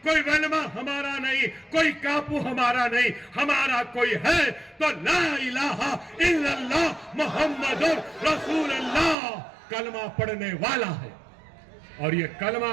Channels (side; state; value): left; drops out; at 9.2 s